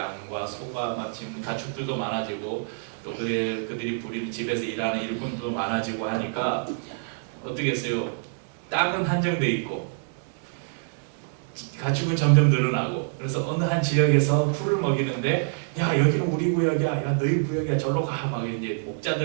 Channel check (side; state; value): left; silent; digital silence